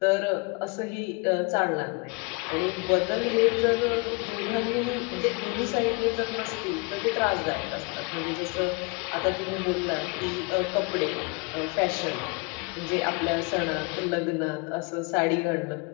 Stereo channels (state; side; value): quieter; right; 29.9 dB